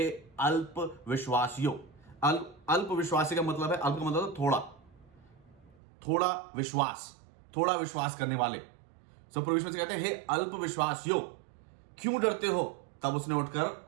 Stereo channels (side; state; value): left; drops out; at 5.8 s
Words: अल्प विश्वासियों. अल्प विश्वासी का मतलब है, अल्प का मतलब थोड़ा विश्वास करने वाले. सो प्रभु यीशु मसीह कहते हैं, हे अल्प विश्वासियों, क्यों डरते हो? तब उसने उठकर